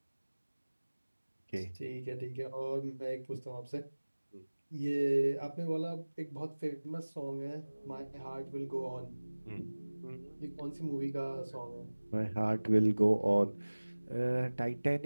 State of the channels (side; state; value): both; inverted; correlation -1.00